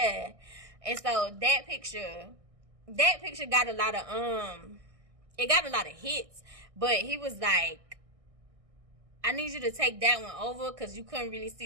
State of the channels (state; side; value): late; left; 1.6 ms